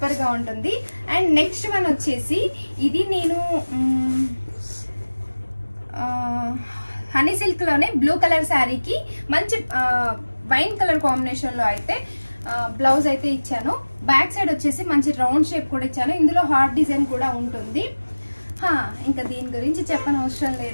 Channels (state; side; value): inverted; both; correlation -1.00